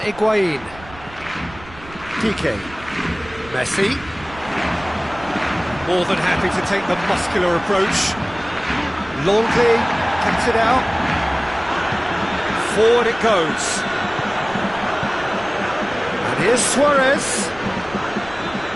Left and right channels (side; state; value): right; noise; rumble, 19 dB below the sound